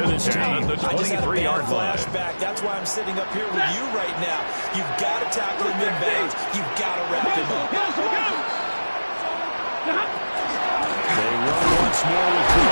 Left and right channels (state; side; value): inverted; both; correlation -1.00